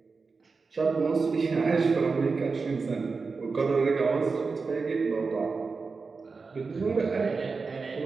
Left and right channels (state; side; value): quieter; left; 4.5 dB